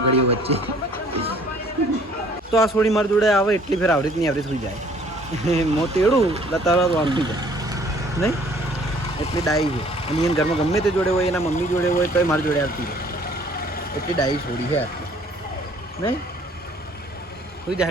વચ્ચે. તો આ છોડી મારી જોડે આવે એટલી ફેર આવડી નહીં આવડી થઈ જાય. મો તેડું તરત વાંચી જાય નહીં, એટલી ડાઈ છે. અને એને ઘરમાં ગમે તે જોડે હોય, એના મમ્મી જોડે હોય તો મારી જોડે આવતી હોય. એટલી ડાઈ છોડી છે આટલી નહીં. સુઈ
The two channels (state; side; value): normal; both; correlation 0.57